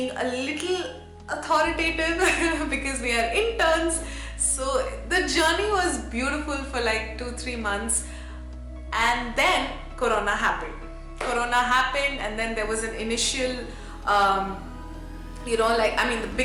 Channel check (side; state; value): both; identical; correlation 1.00